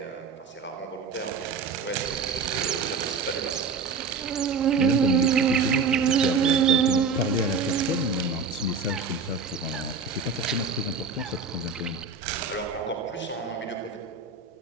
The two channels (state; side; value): quieter; left; 4.7 dB